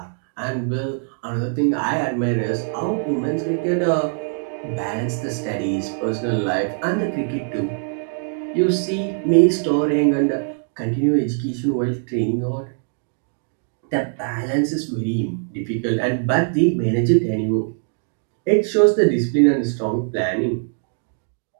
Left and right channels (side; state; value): left; silent; 60 dB below the other